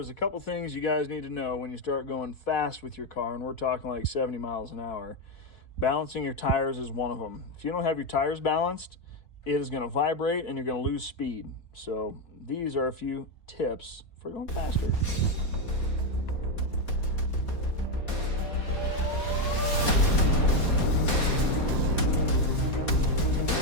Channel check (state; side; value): late; right; 4.2 ms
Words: a couple things you guys need to know when you start going fast with your car, and we're talking like 70 miles an hour. Balancing your tires is one of them. If you don't have your tires balanced, it is going to vibrate and you're going to lose speed. So these are a few tips for going faster.